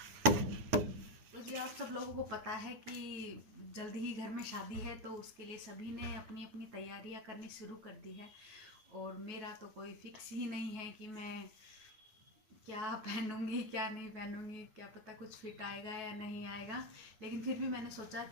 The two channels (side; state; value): left; late; 9.3 ms